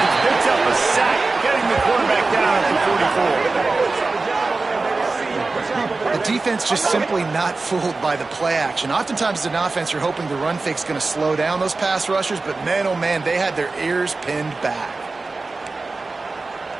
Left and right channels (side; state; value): left; quieter; 3.6 dB